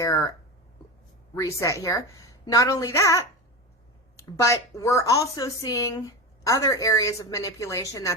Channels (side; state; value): both; normal; correlation 0.23